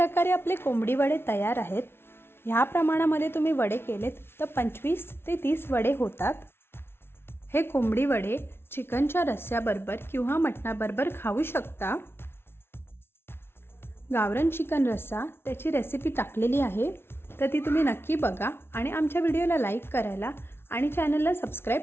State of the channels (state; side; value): late; right; 0.12 ms